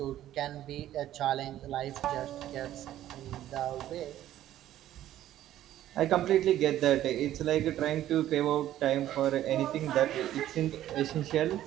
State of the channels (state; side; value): quieter; left; 12.8 dB